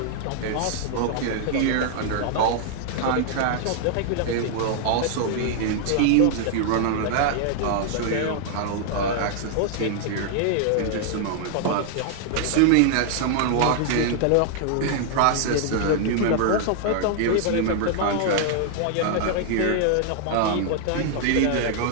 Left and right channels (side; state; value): both; different; correlation 0.00